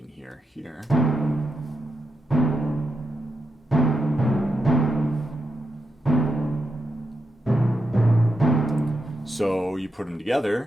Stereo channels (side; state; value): both; normal; correlation 0.86